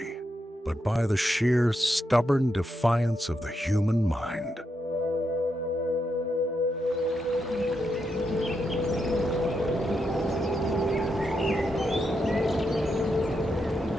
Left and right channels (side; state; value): both; normal; correlation 0.83